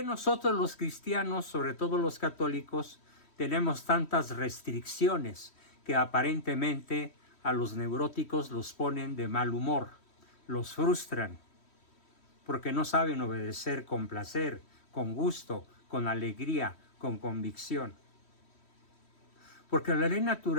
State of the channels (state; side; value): late; right; 3.1 ms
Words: nosotros los cristianos, sobre todo los católicos, tenemos tantas restricciones que aparentemente a los neuróticos los ponen de mal humor, los frustran, porque no saben obedecer con placer, con gusto, con alegría, con convicción? Porque la ley